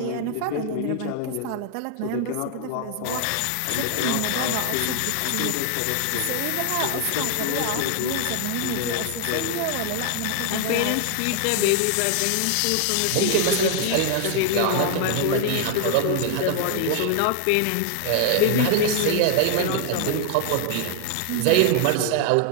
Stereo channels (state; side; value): different; both; correlation 0.00